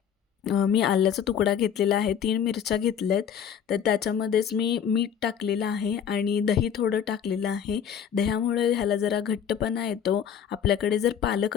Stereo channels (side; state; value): right; quieter; 8.4 dB